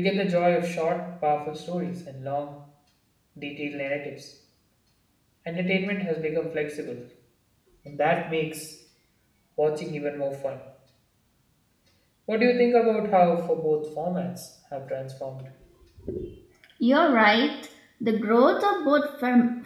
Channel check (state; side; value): identical; both; correlation 1.00